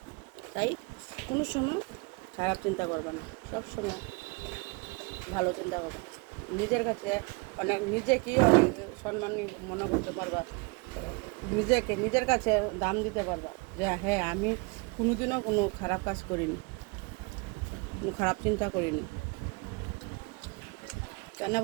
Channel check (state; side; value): quieter; left; 29.9 dB